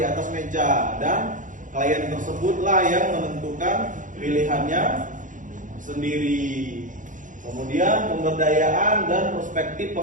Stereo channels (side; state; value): left; late; 0.37 ms